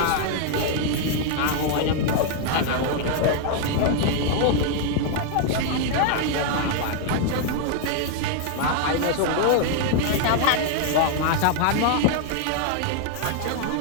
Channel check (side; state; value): both; different; correlation 0.00